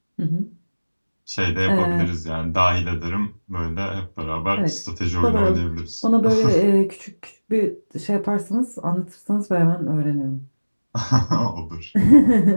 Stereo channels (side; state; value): both; inverted; correlation -1.00